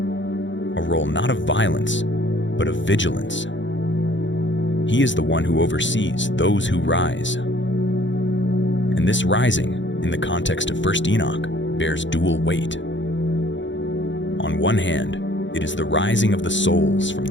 a role not of violence, but of vigilance. He is the one who oversees those who rise. And this rising, in the context of 1 Enoch, bears dual weight. On one hand, it is the rising of the souls from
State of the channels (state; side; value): late; right; 0.54 ms